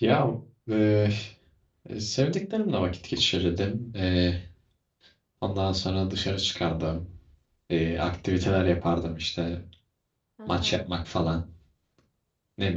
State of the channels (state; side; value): identical; both; correlation 1.00